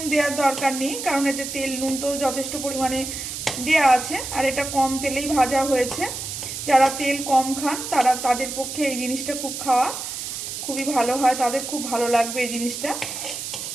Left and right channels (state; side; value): noise; right; hiss, 6 dB below the sound